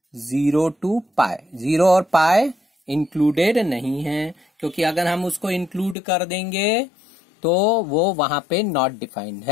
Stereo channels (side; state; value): right; drops out; at 6.0 s